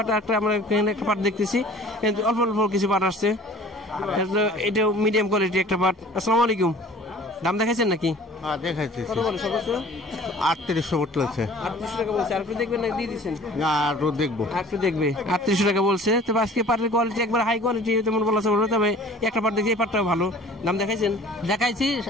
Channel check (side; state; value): both; normal; correlation 0.47